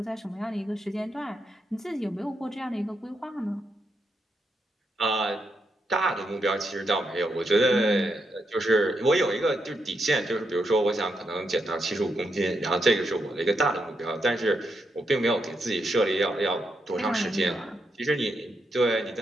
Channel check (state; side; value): normal; both; correlation 0.82